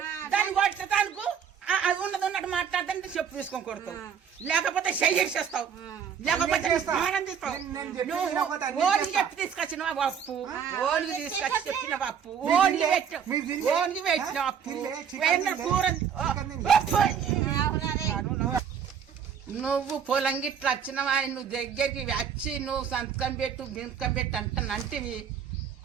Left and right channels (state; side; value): quieter; left; 7.7 dB